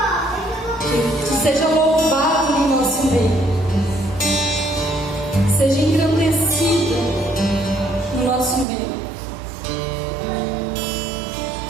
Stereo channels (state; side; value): drops out; left; at 8.7 s